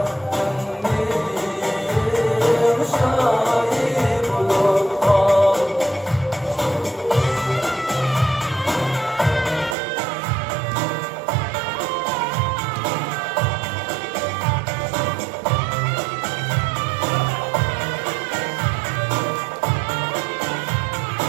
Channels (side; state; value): left; drops out; at 9.8 s